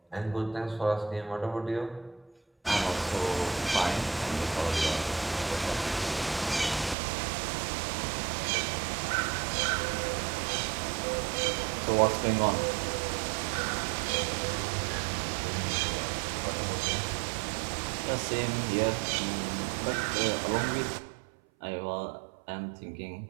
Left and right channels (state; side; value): drops out; left; at 7.0 s